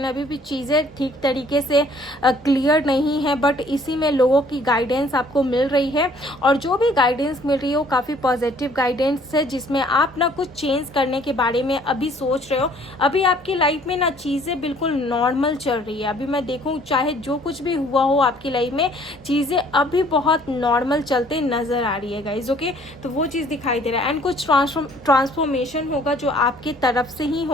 अभी भी चीज़ें ठीक तरीके से क्लियर नहीं है, बट इसी में लोगों की गाइडेंस आपको मिल रही है। और जो भी गाइडेंस मिल रही है वो काफ़ी पॉजिटिव गाइडेंस है, जिसमें आप ना कुछ चेंज करने के बारे में अभी सोच रहे हो। अभी आपकी लाइफ में ना चीज़ें बिल्कुल नॉर्मल चल रही है। अभी मैं देखूँ चाहे जो कुछ भी हुआ हो आपकी लाइफ में, चीज़ें अभी बहुत नॉर्मल चलते नज़र आ रही है गाइज। ओके, तो वो चीज़ दिखाई दे रहा है। एंड कुछ ट्रांसफॉर्मेशन होगा जो आपकी तरफ से ही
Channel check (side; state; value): both; normal; correlation 0.58